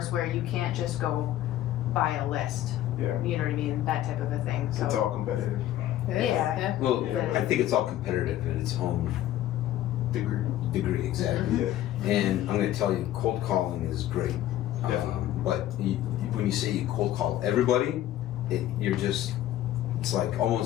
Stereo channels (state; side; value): quieter; right; 13.2 dB